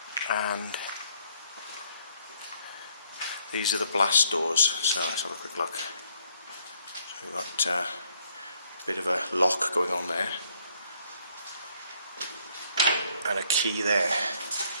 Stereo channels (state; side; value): inverted; both; correlation -0.67